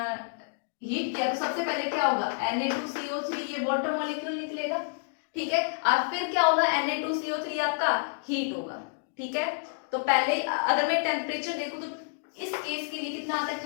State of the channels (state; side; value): silent; right; digital silence